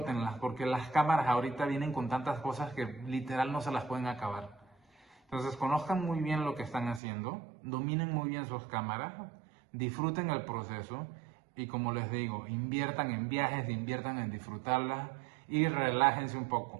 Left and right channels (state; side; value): drops out; left; at 7.0 s